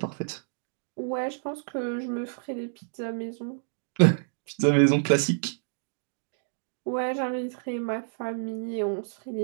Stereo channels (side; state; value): left; silent; digital silence